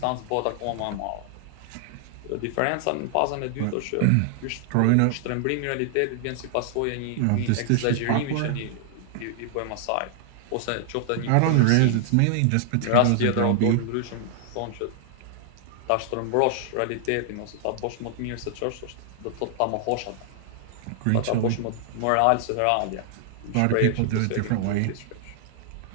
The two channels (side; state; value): both; different; correlation 0.00